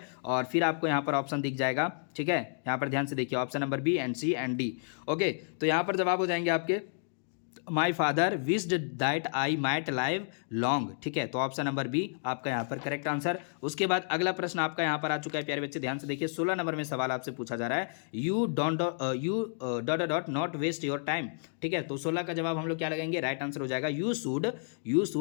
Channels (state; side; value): silent; right; digital silence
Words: और फिर आपको यहाँ पर ऑप्शन दिख जाएगा, ठीक है, यहाँ पर ध्यान से देखिए, option number B and C and D. Okay, तो यहाँ पर जवाब हो जाएंगे आपके my father wished that I might live long, ठीक है, तो ऑप्शन नंबर बी आपका यहाँ पर करेक्ट आंसर। उसके बाद अगला प्रश्न आपका यहाँ पर आ चुका है प्यारे बच्चे, ध्यान से देखिए, 16 नंबर में सवाल आपसे पूछा जा रहा है, you dot dot not waste your time, ठीक है, तो 16 का जवाब हम लोग क्या लगाएंगे? राइट आंसर हो जाएगा you